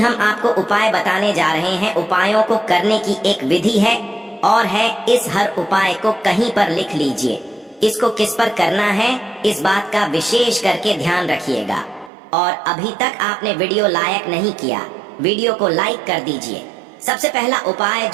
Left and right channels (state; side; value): drops out; left; at 12.1 s